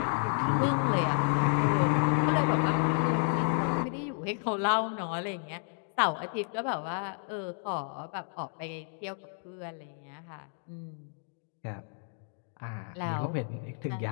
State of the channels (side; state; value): right; silent; 57 dB below the other